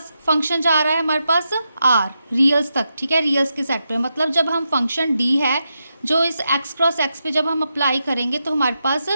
फंक्शन जा रहा है, हमारे पास आर रियल्स तक। ठीक है, रियल्स के सेट पे, मतलब जब हम फंक्शन डी है जो इस एक्स क्रॉस एक्स पे जब हम अप्लाई करेंगे तो हमारे पास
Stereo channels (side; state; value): both; inverted; correlation -0.86